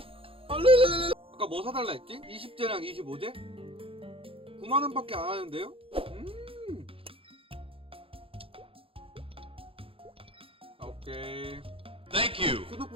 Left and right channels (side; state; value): left; late; 0.27 ms